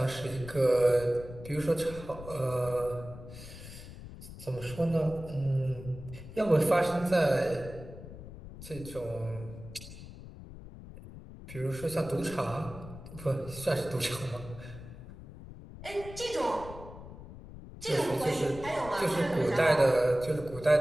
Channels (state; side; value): noise; left; rumble, 14 dB below the sound